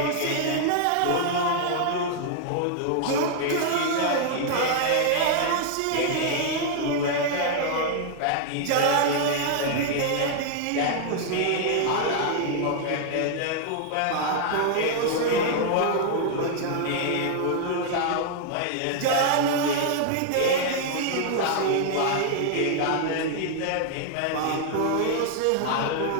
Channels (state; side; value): different; both; correlation -0.01